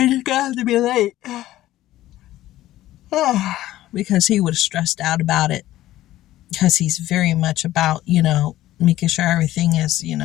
just gonna have to be late. Because he was stressed out about it, because he's very much about, making sure everything is,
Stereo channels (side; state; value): right; quieter; 14.8 dB